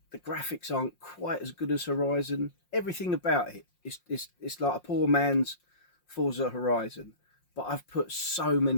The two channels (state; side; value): late; right; 5.6 ms